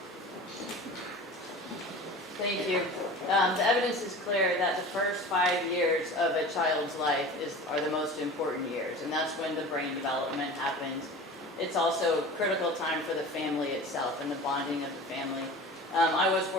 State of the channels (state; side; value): normal; both; correlation 0.37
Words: Thank you. The evidence is clear that the first 5 years of a child's life are the most important years, and that's when the brain development happens. It's also a critical time for the family itself and the bonding of the family. I was